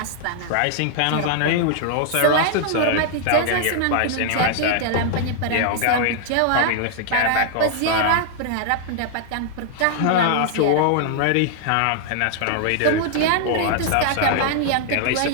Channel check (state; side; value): different; both; correlation 0.00